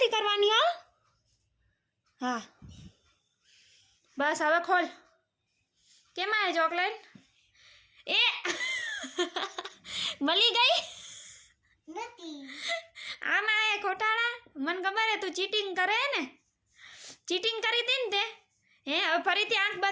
करवानी हो हाँ बस हवे खोल केम आए चॉकलेट ए मली गई नहीं आम आए खोटाड़ा मन खबर है तू चीटिंग करे ने चीटिंग करी थी ने हे હવે ફરીથી આંખ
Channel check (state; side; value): identical; both; correlation 1.00